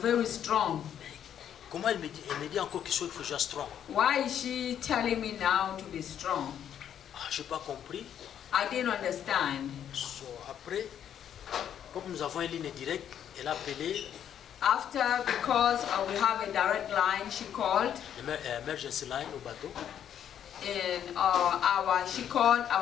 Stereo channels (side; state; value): right; quieter; 9.6 dB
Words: very strong. Comment elle me dit encore qu'il faut que je sois strong? Why is she telling me now to be strong? Je n'ai pas compris. I didn't understand. So, après, comme nous avons une ligne directe, elle a appelé After, because we have a direct line, she called. l'emergency line au bateau. And she called